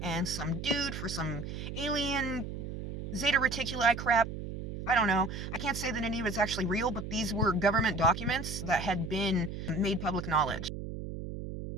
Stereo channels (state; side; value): noise; right; hum, 7 dB below the sound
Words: and some dude for some alien Zeta Reticuli crap. I don't know. I can't say that any of it's actually real, but these were government documents that had been made public knowledge.